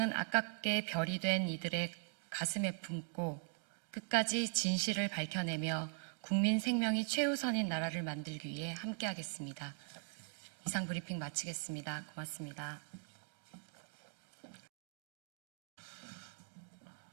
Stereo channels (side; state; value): left; silent; 51 dB below the other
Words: 아깝게 별이 된 이들의 가슴에 품고 끝까지 진실을 밝혀내며 국민 생명이 최우선인 나라를 만들기 위해 함께하겠습니다. 이상 브리핑 마치겠습니다. 고맙습니다.